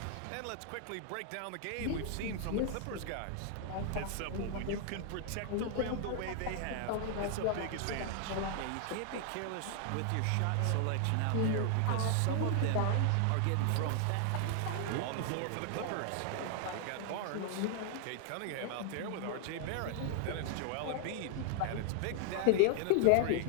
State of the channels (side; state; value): both; different; correlation 0.00